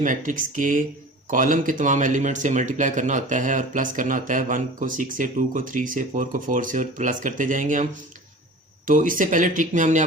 मैट्रिक्स के कॉलम के तमाम एलिमेंट से मल्टीप्लाई करना होता है और प्लस करना होता है। 1 को 6 से, 2 को 3 से, 4 को 4 से और प्लस करते जाएंगे हम। तो इससे पहले ट्रिक में हमने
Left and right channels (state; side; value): normal; both; correlation 0.39